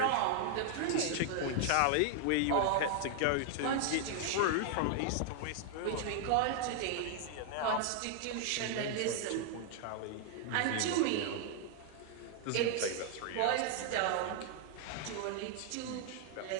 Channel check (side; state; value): both; different; correlation 0.00